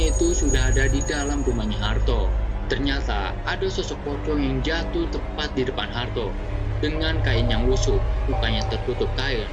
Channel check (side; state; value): both; identical; correlation 1.00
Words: itu sudah ada di dalam rumahnya Harto. Ternyata ada sosok pocong yang jatuh tepat di depan Harto. Dengan kain yang lusuh, mukanya tertutup kain,